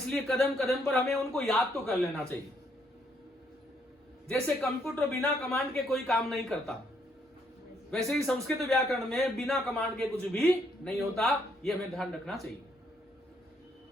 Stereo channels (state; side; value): normal; both; correlation 0.72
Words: कदम कदम पर हमें उनको याद तो कर लेना चाहिए। जैसे कंप्यूटर बिना कमांड के कोई काम नहीं करता, वैसे ही संस्कृत व्याकरण में बिना कमांड के कुछ भी नहीं होता। यह हमें ध्यान रखना चाहिए।